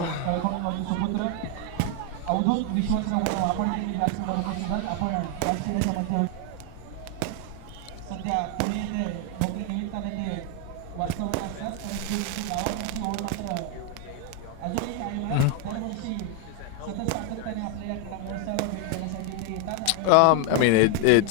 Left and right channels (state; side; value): different; both; correlation 0.01